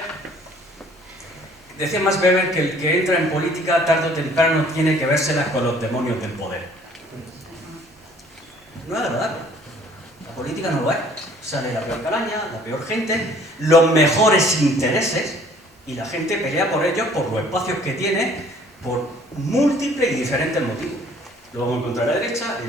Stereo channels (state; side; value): normal; both; correlation 0.56